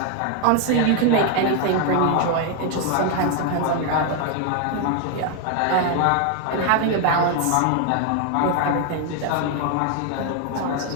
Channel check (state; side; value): different; both; correlation 0.01